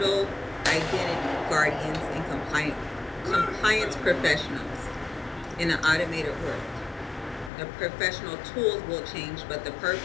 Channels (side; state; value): right; drops out; at 7.5 s